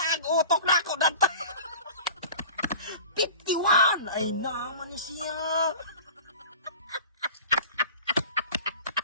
ang utok na ako ng 51. Ay naman ni siya.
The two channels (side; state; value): both; inverted; correlation -0.39